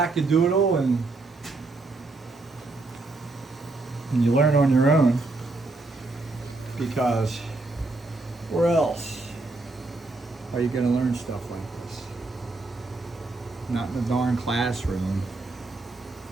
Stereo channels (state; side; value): quieter; left; 3.2 dB